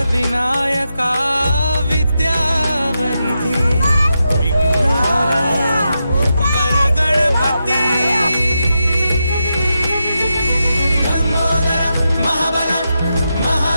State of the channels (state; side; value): inverted; both; correlation -0.87